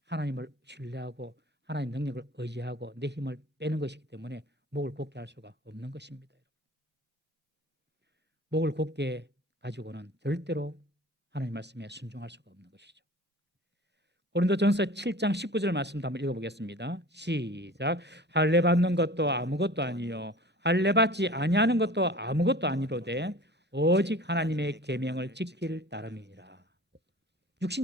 하나님을 신뢰하고 하나님 능력을 의지하고 내 힘을 빼는 것이기 때문에 목을 곧게 할 수가 없는 것입니다. 목을 곧게 가지고는 절대로 하나님 말씀에 순종할 수가 없는 것이죠. 고린도전서 7장 19절 말씀도 한번 읽어보겠습니다. 시작. 할례 받는 것도 아무것도 아니요 할례 받지 아니하는 것도 아무것도 아니로되 오직 하나님의 계명을 지킬 따름이니라.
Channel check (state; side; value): normal; both; correlation 0.42